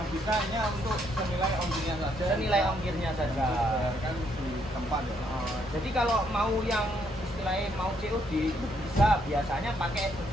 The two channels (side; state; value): both; normal; correlation 0.72